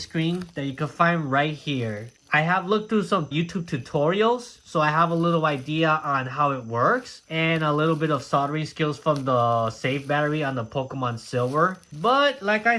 that you can find right here. I have looked through some YouTube tutorials, so I have a little idea on how it works and a little bit of soldering skills from the save battery on the Pokemon Silver. But like I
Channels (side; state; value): both; identical; correlation 1.00